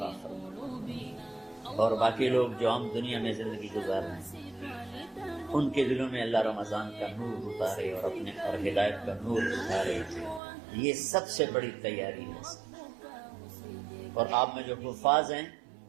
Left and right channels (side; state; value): left; drops out; at 10.4 s